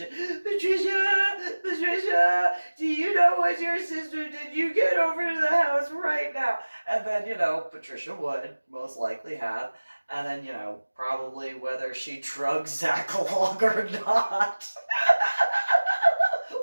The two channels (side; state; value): both; inverted; correlation -1.00